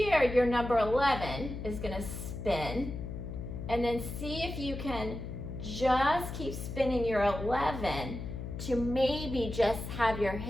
your number 11 is going to spin. And then see if you can just keep spinning your 11 to maybe just have your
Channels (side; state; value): left; noise; hum, 7 dB below the sound